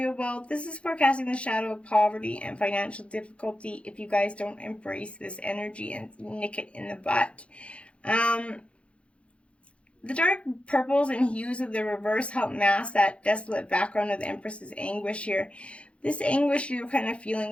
wealth, this is forecasting the shadow of poverty and financial difficulty if you guys don't embrace this energy and nick it in the butt. The dark purples and hues of the reverse help mask that desolate background of the Empress's anguish here. This anguish you're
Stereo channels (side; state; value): right; late; 0.060 ms